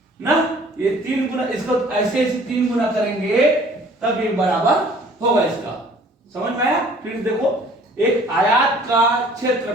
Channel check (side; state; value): both; normal; correlation 0.53